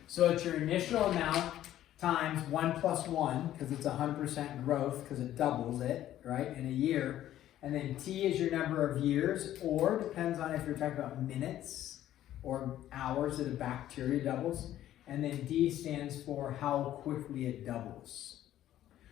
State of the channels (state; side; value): quieter; right; 12.7 dB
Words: So it's your initial amount times 1 plus 1, because it's 100% growth, because it doubles it, right, in a year. And then t is your number of years, or depends on if you're talking about minutes or hours that a bacteria doubles. And then d stands for how quickly it doubles.